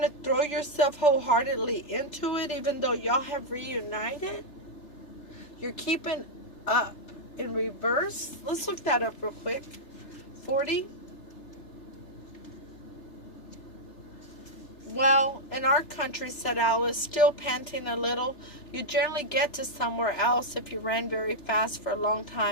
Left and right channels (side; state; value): right; late; 3.3 ms